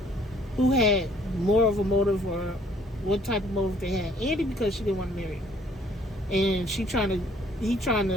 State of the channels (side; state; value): both; normal; correlation 0.60